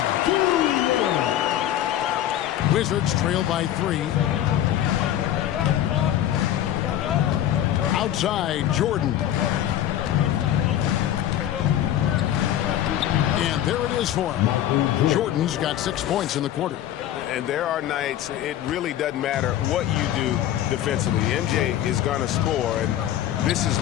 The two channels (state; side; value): quieter; right; 11.8 dB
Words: Wizards trail by 3. Outside, Jordan. And there it is for him. Jordan's got 6 points in the quarter. And there are nights it really doesn't matter what you do defensively. MJ is going to score, and this is